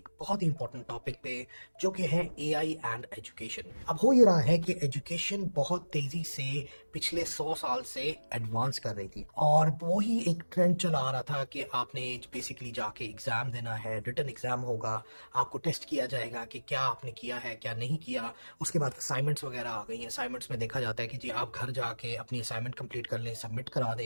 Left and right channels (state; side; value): inverted; both; correlation -1.00